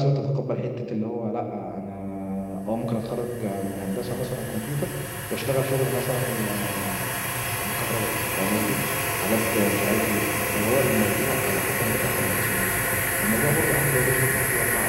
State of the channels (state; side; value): identical; both; correlation 1.00